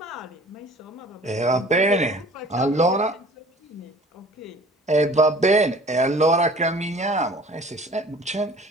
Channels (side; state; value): both; normal; correlation 0.48